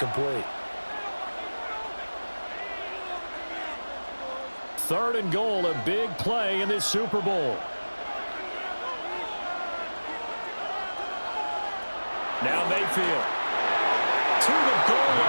3rd and goal, a big play in this Super Bowl. Now Mayfield. To the goal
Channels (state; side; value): inverted; both; correlation -1.00